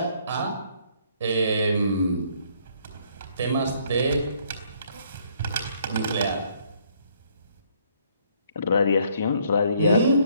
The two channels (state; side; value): inverted; both; correlation -0.66